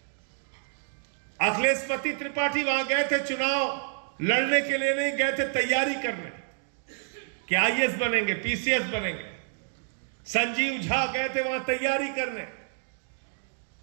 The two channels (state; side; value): silent; left; 59 dB below the other